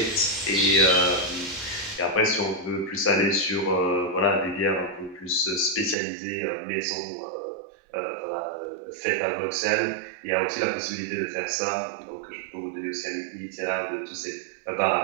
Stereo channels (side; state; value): left; drops out; at 6.0 s